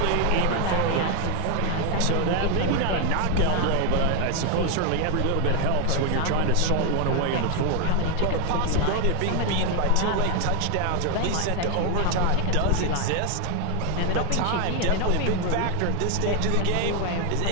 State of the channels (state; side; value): different; both; correlation 0.01